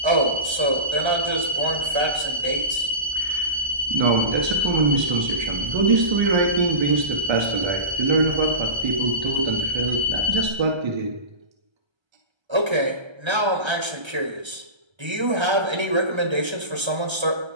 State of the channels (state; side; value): late; left; 1.3 ms